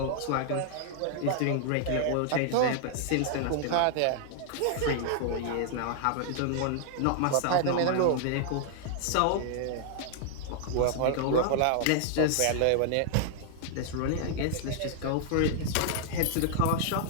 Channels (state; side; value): different; both; correlation -0.01